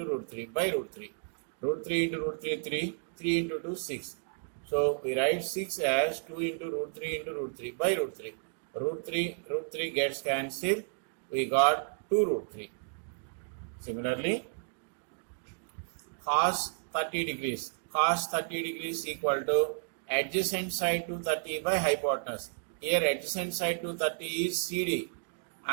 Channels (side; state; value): left; silent; digital silence